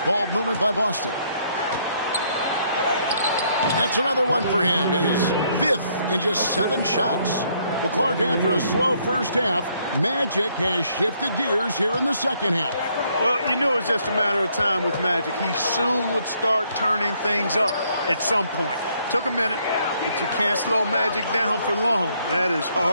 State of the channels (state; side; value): inverted; both; correlation -0.69